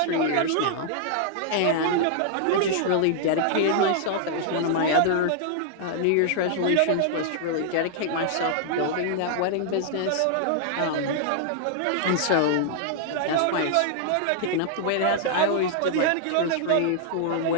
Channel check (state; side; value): different; both; correlation -0.01